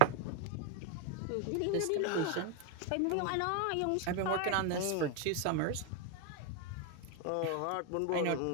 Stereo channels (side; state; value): both; different; correlation 0.01